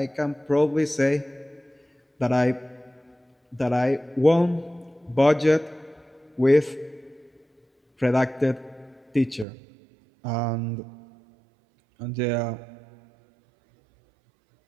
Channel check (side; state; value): left; drops out; at 9.5 s